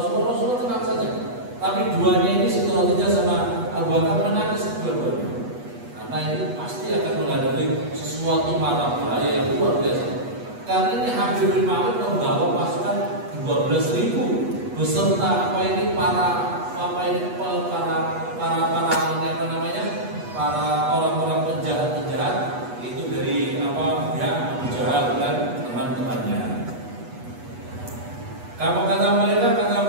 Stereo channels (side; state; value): left; late; 8.2 ms